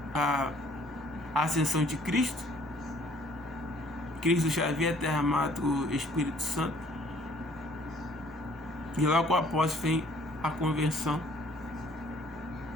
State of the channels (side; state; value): both; normal; correlation 0.59